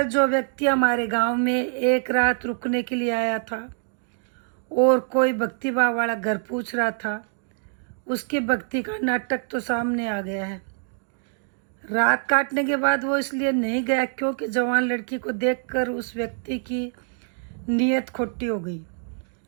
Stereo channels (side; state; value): left; silent; digital silence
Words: जो व्यक्ति हमारे गांव में एक रात रुकने के लिए आया था और कोई भक्तिभाव वाला घर पूछ रहा था, उसकी भक्ति का नाटक तो सामने आ गया है। रात काटने के बाद वो इसलिए नहीं गया क्योंकि जवान लड़की को देखकर उस व्यक्ति की नीयत खोटी हो गई,